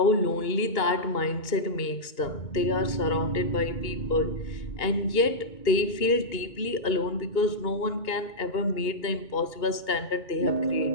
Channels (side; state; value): right; late; 2.2 ms